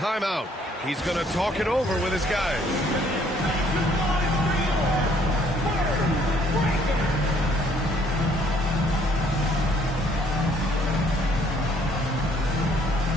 He's going to talk it over with his guys.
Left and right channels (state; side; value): normal; both; correlation 0.63